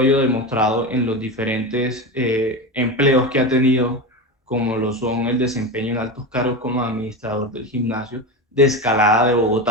ello demostrado en los diferentes empleos que ha tenido, como lo son el desempeño en altos cargos como administrador del gimnasio de Escalada de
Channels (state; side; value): normal; both; correlation 0.21